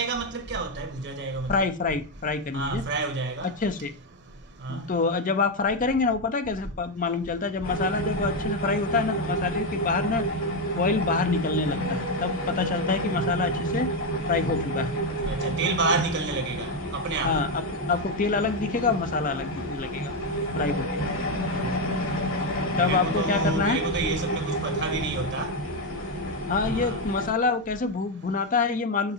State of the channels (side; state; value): both; normal; correlation 0.06